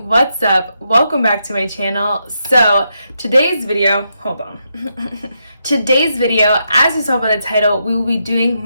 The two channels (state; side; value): inverted; both; correlation -0.82